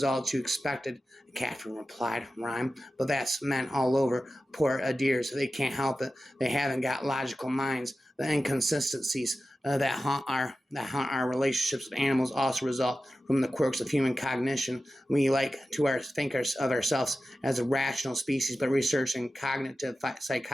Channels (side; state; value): both; normal; correlation 0.93